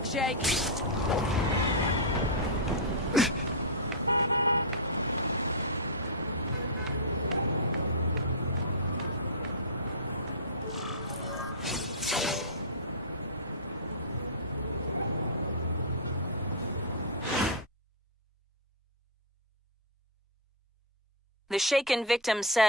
The shaken victim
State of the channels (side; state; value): both; normal; correlation -0.10